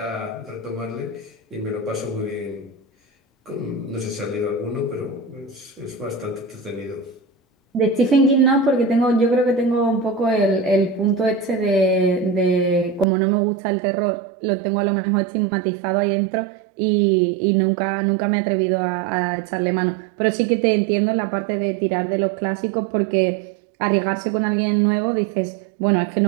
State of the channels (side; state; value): left; drops out; at 13.1 s